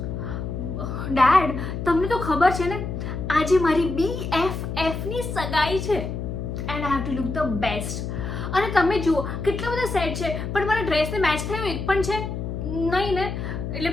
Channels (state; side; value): noise; left; hum, 5 dB below the sound